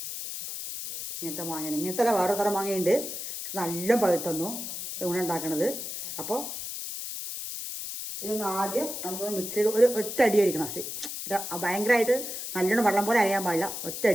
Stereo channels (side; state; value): left; noise; hiss, 7 dB below the sound